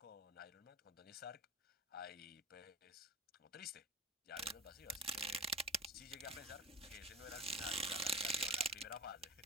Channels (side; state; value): both; normal; correlation 0.33